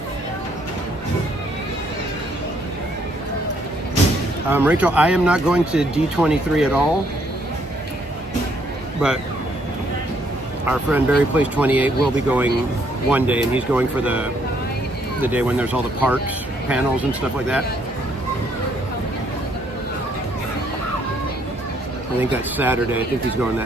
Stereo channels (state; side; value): normal; both; correlation 0.69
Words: Rachel, I am not going to D23 at all, but our friend Barry Place 28 will be going one day, and he's going for the day when there's all the parks, panels, and stuff like that. I think that's Saturday. I think he's going